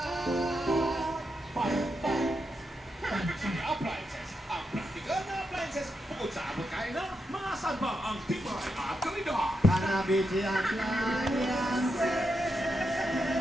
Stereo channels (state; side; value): normal; both; correlation 0.84